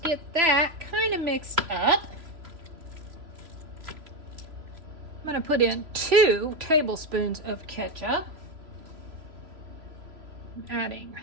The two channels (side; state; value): left; late; 3.0 ms